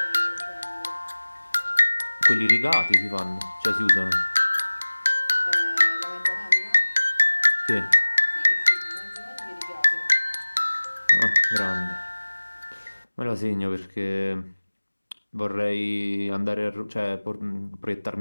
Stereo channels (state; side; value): inverted; both; correlation -1.00